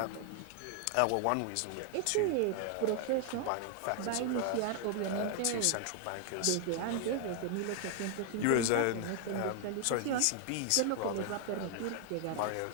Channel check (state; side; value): different; both; correlation 0.00